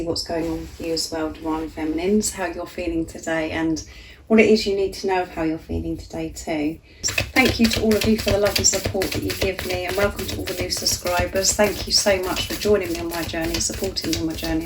what's going on with you as well, Divine Feminines, how you're feeling today and what it is you need to know of how you're feeling today too. Thank you to all of you for the love and support that you give me, and welcome to all the new subscribers. Thank you so much for joining me on my journey, supporting me on my journey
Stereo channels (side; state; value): both; identical; correlation 1.00